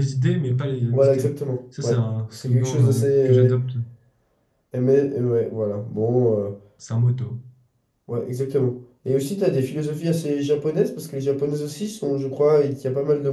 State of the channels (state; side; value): identical; both; correlation 1.00